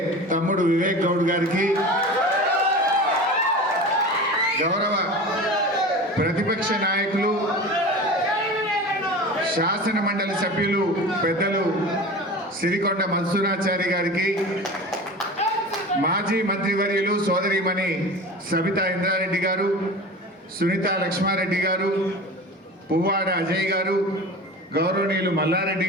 తమ్ముడు వివేక్ గౌడ్ గారికి, గౌరవ ప్రతిపక్ష నాయకులు శాసన మండలి సభ్యులు పెద్దలు సిరికొండ మన్సూరాచారి గారికి, మాజీ మంత్రివర్యులు సోదరిమణి సబితా ఇంద్రారెడ్డి గారు, సునీత లక్ష్మారెడ్డి గారు, పువ్వాడ అజయ్ గారు, గౌరవనీయులు మల్లారెడ్డి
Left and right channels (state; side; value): normal; both; correlation 0.34